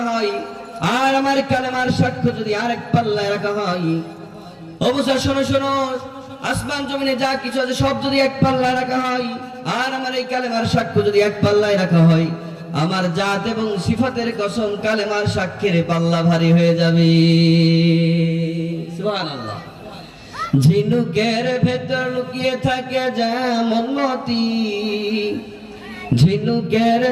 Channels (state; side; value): identical; both; correlation 1.00